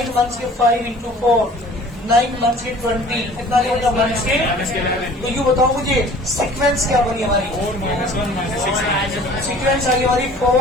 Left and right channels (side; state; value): both; normal; correlation 0.48